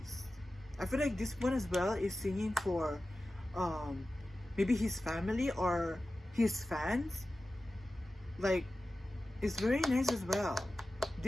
I feel like this one as well is singing for maybe his family or his fans. Like, it's very nice as well.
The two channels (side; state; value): both; normal; correlation 0.94